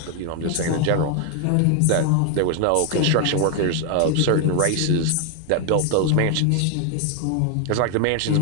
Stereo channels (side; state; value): both; different; correlation 0.00